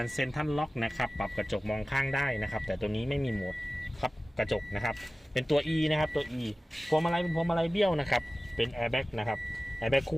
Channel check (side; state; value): both; normal; correlation 0.97